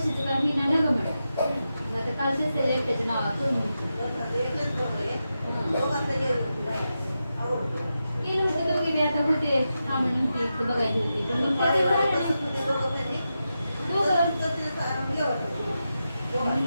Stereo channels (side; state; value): both; inverted; correlation -0.89